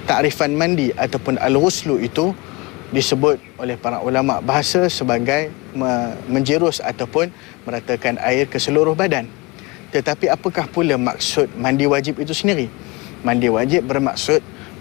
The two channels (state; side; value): quieter; right; 24.3 dB